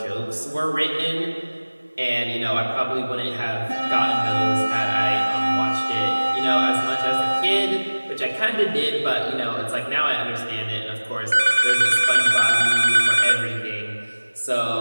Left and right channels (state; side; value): inverted; both; correlation -1.00